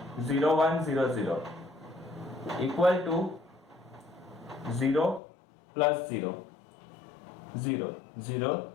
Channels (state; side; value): drops out; right; at 5.2 s